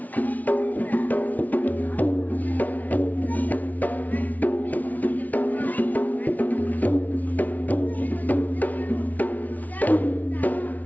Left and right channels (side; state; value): right; late; 0.075 ms